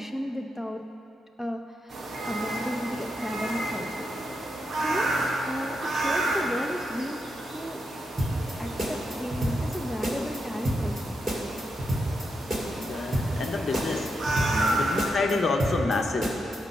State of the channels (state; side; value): normal; both; correlation 0.84